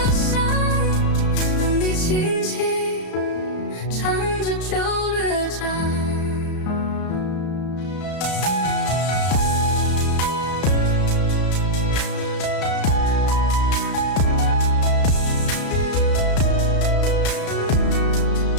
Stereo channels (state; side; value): late; right; 34 ms